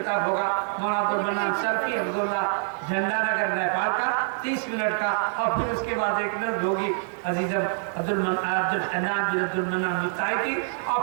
होगा मौलाना अब्दुल मन्नान सरफी हफ़िज़हुल्लाह झंडा नगर नेपाल का 30 मिनट का, और फिर उसके बाद एक नज़्म होगी अजीज़म अब्दुल हन्नान बिन अब्दुल मन्नान मुफ्ताही की, और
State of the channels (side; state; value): left; silent; digital silence